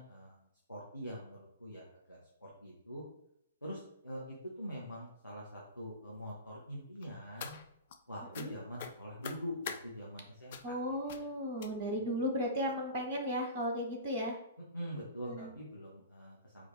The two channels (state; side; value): inverted; both; correlation -0.32